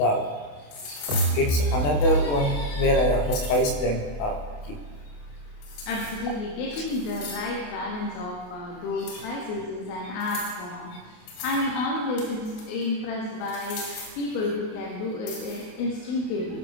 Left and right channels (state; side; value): late; right; 28 ms